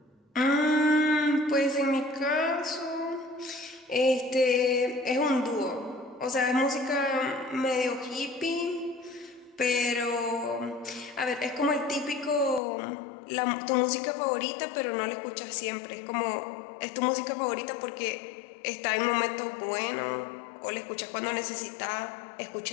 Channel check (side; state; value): right; drops out; at 12.6 s